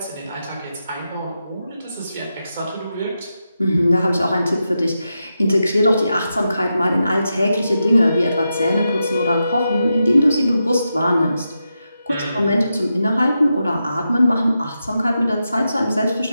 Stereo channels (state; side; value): inverted; both; correlation -0.88